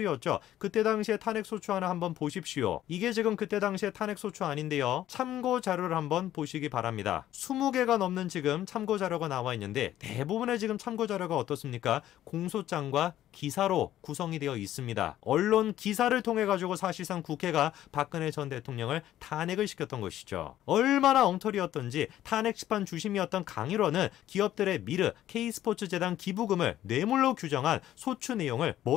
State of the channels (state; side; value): quieter; right; 12.7 dB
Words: 그때 당시에 탄핵소추안을 한번 보십시오. 이게 지금 그때 당시에 탄핵소추안인데요. 참고 자료를 한번 보시기 바랍니다. 20개가 넘는 지금 참고 자료가 나와 있는데 대부분의 지금 참고 자료가 어떻습니까? 공소장과 기사로 구성이 되어 있습니다. 언론 기사를 통해 가지고 사실상 국회가 박근혜 전 대통령을 탄핵을 시켰던 것이죠. 얼마나 엉터리였던지 탄핵 심판 주심이었던 강일원은 기업들의 미르, K스포츠재단 기부금을 뇌물로 규정한 소추 내용을